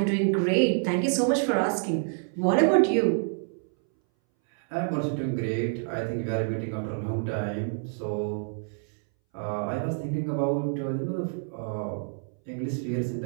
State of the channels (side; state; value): left; silent; 60 dB below the other